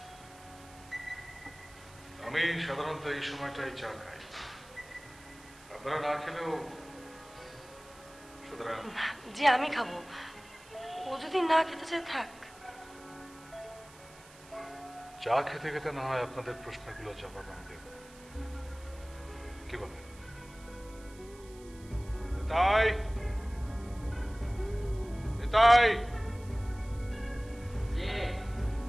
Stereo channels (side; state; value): right; noise; hiss, 22 dB below the sound